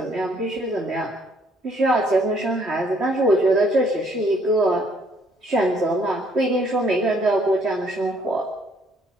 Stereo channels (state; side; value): normal; both; correlation 0.65